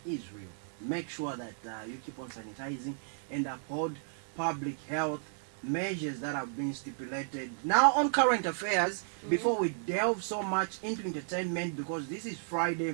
is real. Make sure that you keep on sanitizing and uphold public health measures that have been stipulated. Now on current affairs, before we delve so much into entertainment, because this is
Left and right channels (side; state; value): left; silent; 55 dB below the other